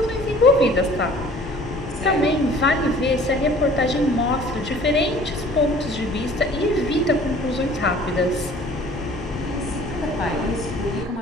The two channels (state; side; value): normal; both; correlation 0.50